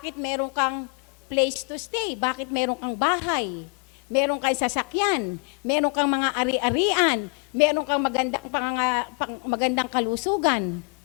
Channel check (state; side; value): quieter; right; 38.1 dB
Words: meron kang place to stay? Bakit meron kang bahay? Meron kang sasakyan? Meron kang mga ari-arian? Meron kang magandang kalusugan?